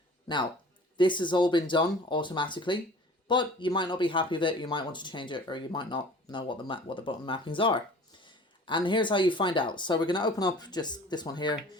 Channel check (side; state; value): both; normal; correlation 0.45